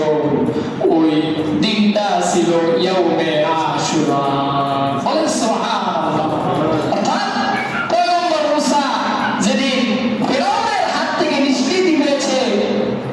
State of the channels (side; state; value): both; identical; correlation 1.00